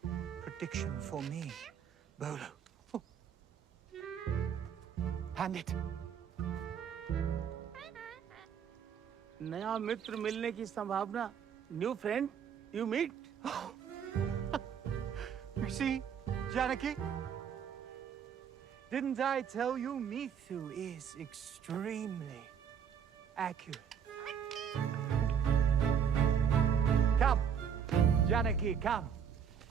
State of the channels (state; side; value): quieter; left; 7.7 dB